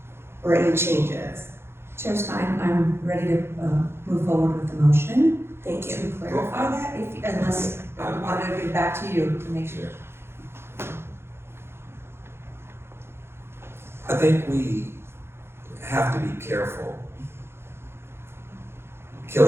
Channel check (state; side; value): late; left; 0.12 ms